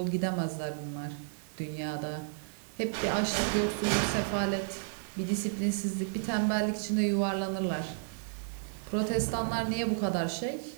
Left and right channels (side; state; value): left; silent; 56 dB below the other